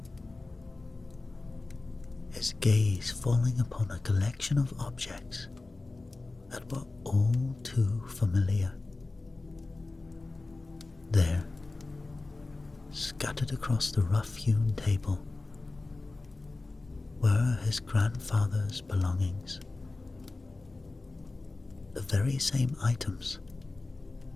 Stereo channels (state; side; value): quieter; right; 3.3 dB